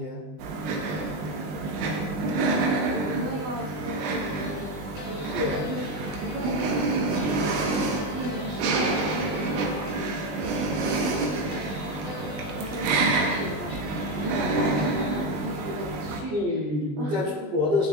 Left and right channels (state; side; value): late; left; 20 ms